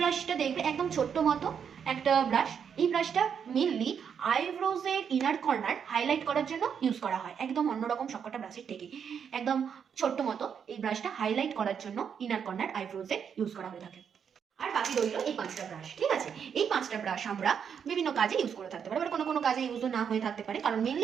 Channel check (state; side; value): quieter; left; 7.4 dB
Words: দেখবে একদম ছোট্ট মতো একটা ব্রাশ। এই ব্রাশটা মেনলি আইব্রোজের ইনার কর্নার হাইলাইট করার জন্য ইউজ করা হয়, একদম অন্যরকম সবকটা ব্রাশের থেকে একদম ছোট্ট মতো এই ব্রাশটা হাইলাইট করার জন্য ইনার কর্নার আইব্রোজে ইউজ করা হয়ে থাকে। আর বাকি রইল এই পাঁচটা ব্রাশ। ঠিক আছে, এই পাঁচটা ব্রাশ আমরা বিভিন্ন কাজে ইউজ করে থাকতে পারি, আবার কোনো কোনো কাজে ইউজ না হয়ে থাকতে পারে, কারণ